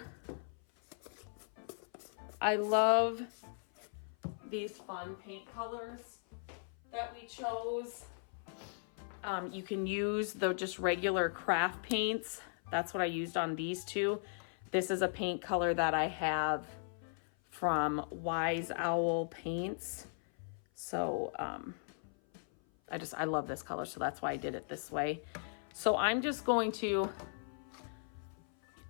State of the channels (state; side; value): silent; right; 53 dB below the other